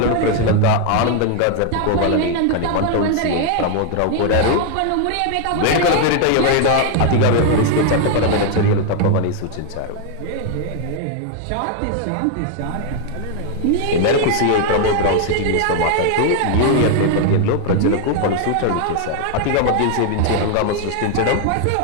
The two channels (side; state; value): both; different; correlation 0.00